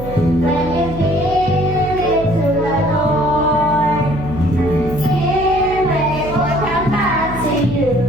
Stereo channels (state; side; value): noise; right; hum, 11 dB below the sound